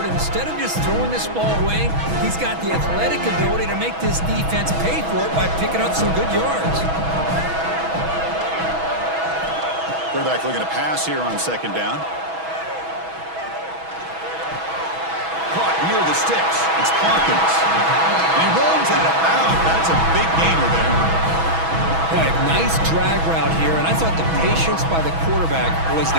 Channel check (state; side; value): late; left; 6.1 ms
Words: Instead of just throwing this ball away, he's got the athletic ability to make this defense pay for it by picking up some good yards. Quarterback looking to pass here on second down. Caught near the sticks. It's Hawkins. He runs out of bounds. That's a big gainer there. Boy, nice drag route here, and I thought the patience by the quarterback was